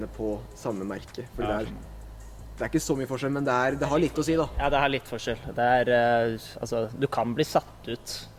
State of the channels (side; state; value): both; identical; correlation 1.00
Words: på samme merke. Fordi Ja, det er ikke så mye forskjell, men det har litt å si da. Ja, det har litt forskjell. Det er, altså, du kan bli satt ut